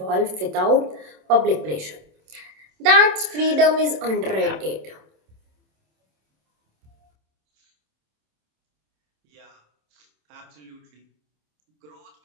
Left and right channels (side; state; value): left; late; 27 ms